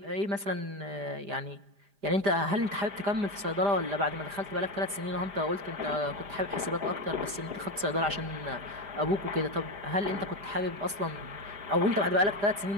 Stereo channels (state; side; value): late; left; 5.0 ms